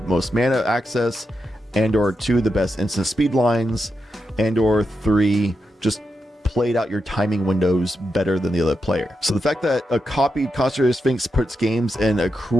mana access, and or two, the best instant speed lines, and or three, just played out your timing windows better than the other player. So the fact that a copied Consecrated Sphinx puts games in a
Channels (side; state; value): both; normal; correlation 0.87